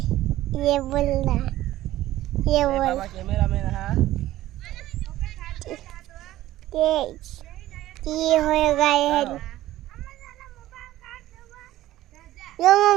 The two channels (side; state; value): left; quieter; 15.0 dB